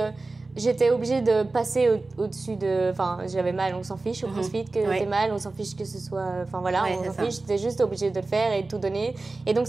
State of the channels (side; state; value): left; quieter; 3.4 dB